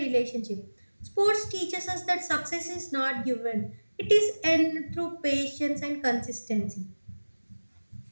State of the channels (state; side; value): inverted; both; correlation -1.00